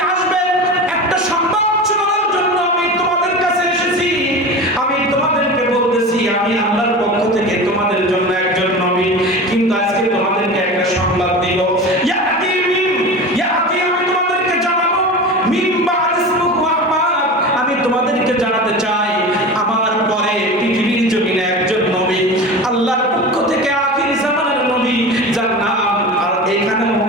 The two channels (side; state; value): both; normal; correlation 0.30